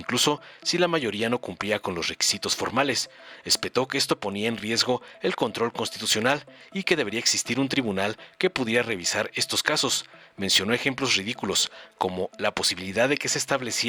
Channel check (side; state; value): both; normal; correlation 0.97